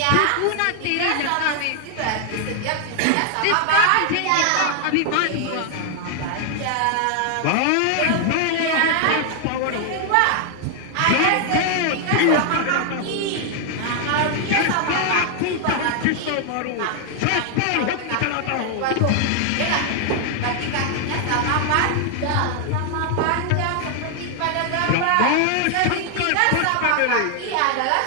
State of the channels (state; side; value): different; both; correlation 0.00